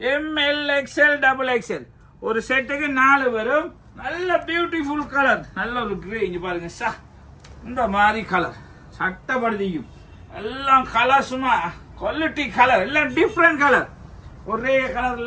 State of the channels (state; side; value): identical; both; correlation 1.00